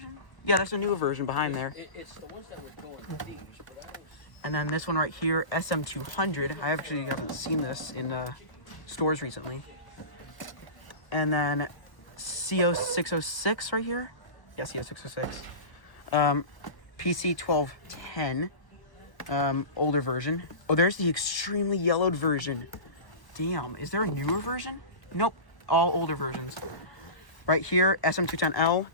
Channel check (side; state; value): right; late; 1.1 ms